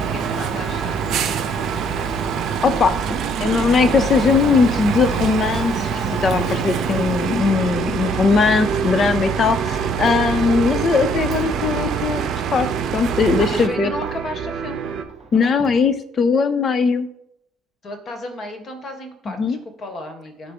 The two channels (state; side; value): normal; both; correlation 0.66